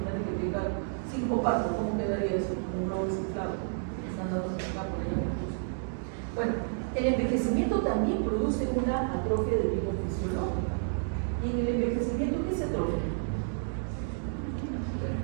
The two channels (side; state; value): left; silent; digital silence